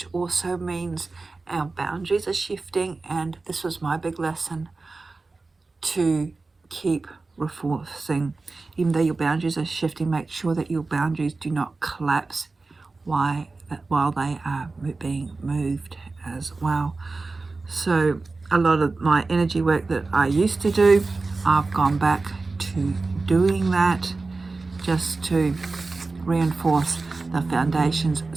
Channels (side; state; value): left; quieter; 3.7 dB